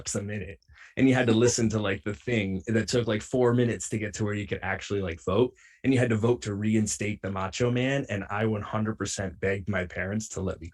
a minute, and you had to listen to like the thing that took like 4 minutes to get to where you could actually like vote, and you had to vote to reinstate the Macho Man. And I 100% begged my parents to let me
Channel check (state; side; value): identical; both; correlation 1.00